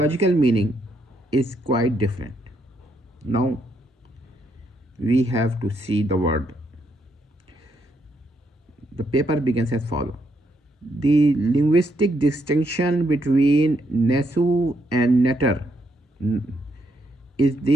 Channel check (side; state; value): both; normal; correlation 0.76